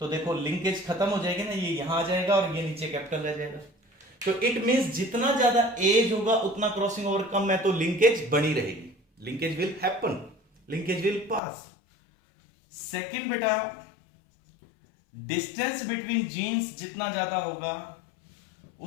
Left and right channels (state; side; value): drops out; right; at 11.4 s